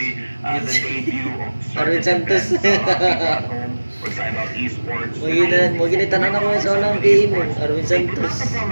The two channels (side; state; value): both; inverted; correlation -1.00